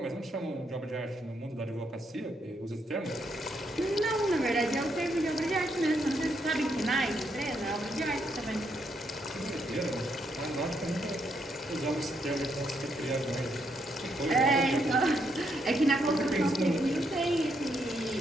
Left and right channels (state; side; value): normal; both; correlation 0.76